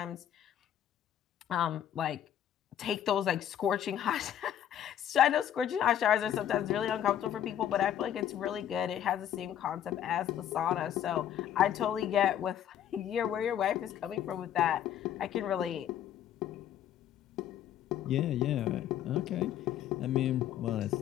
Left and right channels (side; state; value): right; quieter; 10.5 dB